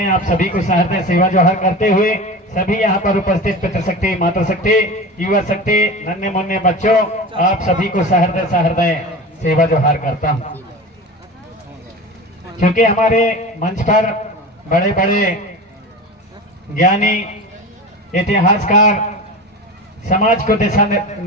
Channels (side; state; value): both; normal; correlation 0.30